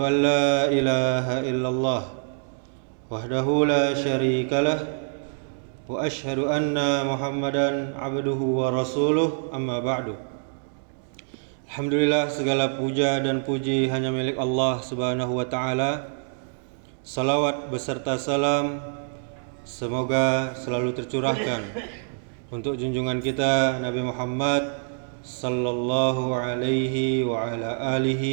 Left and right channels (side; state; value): left; silent; digital silence